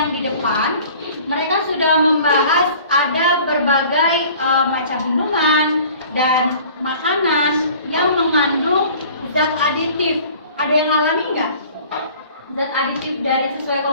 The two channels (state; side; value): inverted; both; correlation -0.48